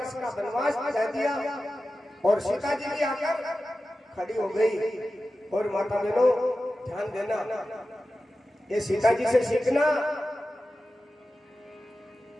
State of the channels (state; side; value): normal; both; correlation 0.94